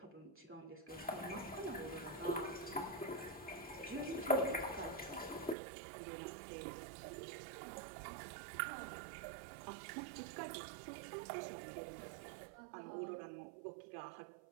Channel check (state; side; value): drops out; left; at 5.6 s